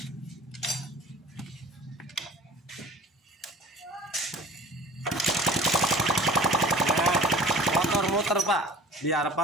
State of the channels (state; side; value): normal; both; correlation 0.46